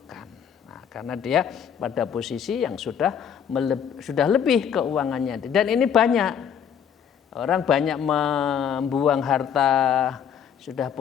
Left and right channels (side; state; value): right; quieter; 8.2 dB